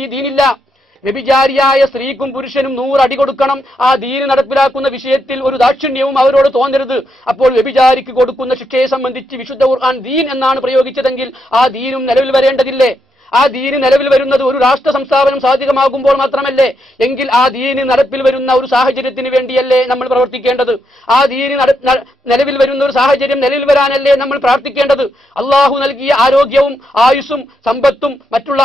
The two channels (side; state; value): both; normal; correlation 0.80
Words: دين الله. വ്യഭിചാരിയായ സ്ത്രീക്കും പുരുഷനും 100 അടി കൊടുക്കണം. ആ ദീൻ നടപ്പിലാക്കുന്ന വിഷയത്തിൽ ഒരു ദാക്ഷിണ്യവും അവരോട് തോന്നരുത്. അപ്പോൾ വ്യഭിചാരിക്ക് കൊടുക്കുന്ന ശിക്ഷയെ സംബന്ധിച്ച് വിശുദ്ധ ഖുർആൻ ദീൻ എന്നാണ് പ്രയോഗിച്ചതെങ്കിൽ ആ ദീനും നിലവിൽ വരേണ്ടതില്ലേ? ആ ദീന് നിലവിൽ വരുന്നത് ഒരു രാഷ്ട്ര സംസ്ഥാപനം സാധികമാകുമ്പോൾ മാത്രമല്ലേ? എങ്കിൽ ആ ദീന് നടപ്പിൽ വരുന്ന ഒരു സാഹചര്യത്തിന് വേണ്ടിയല്ലേ നമ്മൾ പ്രവർത്തിക്കേണ്ടത്? ആ ദീന് നിലവിൽ വരുന്ന ഒരു സാഹചര്യം നിലവിൽ വരാനല്ലേ നമ്മൾ പ്രാർത്ഥിക്കേണ്ടത്? അള്ളാഹു നൽകിയ ആരോഗ്യവും ആയുസ്സും സമ്പത്തും മറ്റുള്ള